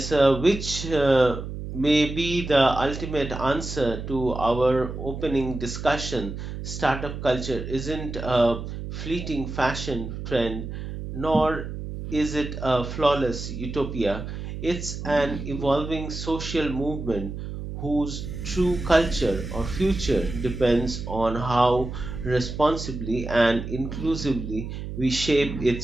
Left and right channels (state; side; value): noise; right; hum, 7 dB below the sound